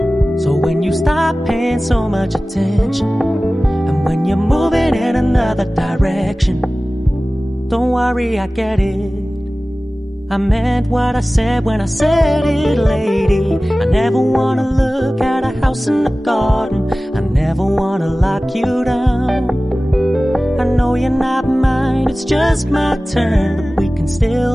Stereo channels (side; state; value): both; normal; correlation 0.97